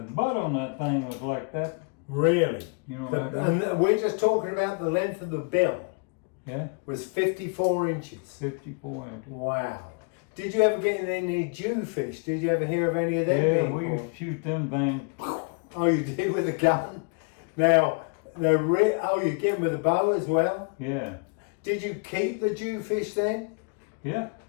butt on that thing was like that. Really? You know what I mean? And we're just talking about the length of the bill. Yeah, Was 54 inches. 54 inches. Wow. Did you ever get any Jewfish? Did you ever hear of any of them? Yeah, being we caught? used to shoot them things. Oh, you did with a gun? Now, you get them with a bow as well? Yeah, Did you keep the Jewfish then? yeah.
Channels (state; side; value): quieter; right; 35.5 dB